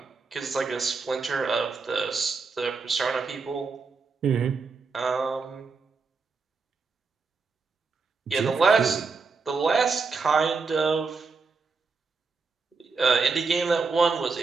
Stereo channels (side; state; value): left; quieter; 4.6 dB